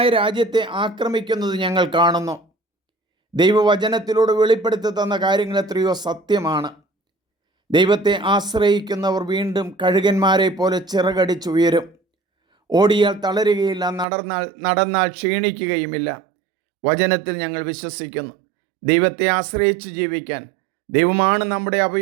രാജ്യത്തെ ആക്രമിക്കുന്നത് ഞങ്ങൾ കാണുന്നു. ദൈവവചനത്തിലൂടെ വെളിപ്പെടുത്തി തന്ന കാര്യങ്ങൾ എത്രയോ സത്യമാണ്. ദൈവത്തെ ആശ്രയിക്കുന്നവർ വീണ്ടും കഴുകന്മാരെ പോലെ ചിറകടിച്ചുയരും. ഓടിയാൽ തളരുകയില്ല, നടന്നാൽ ക്ഷീണിക്കുകയുമില്ല. വചനത്തിൽ ഞങ്ങൾ വിശ്വസിക്കുന്നു. ദൈവത്തെ ആശ്രയിച്ച് ജീവിക്കാൻ, ദൈവമാണ് നമ്മുടെ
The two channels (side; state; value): left; drops out; at 14.1 s